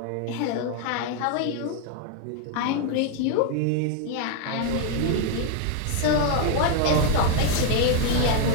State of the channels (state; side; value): different; both; correlation 0.00